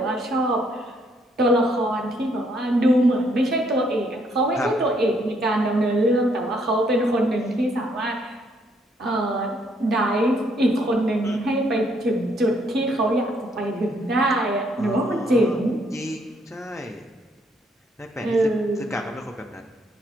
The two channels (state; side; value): normal; both; correlation 0.70